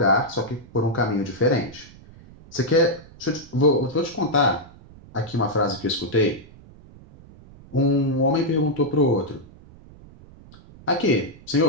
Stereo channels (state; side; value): noise; right; rumble, 22 dB below the sound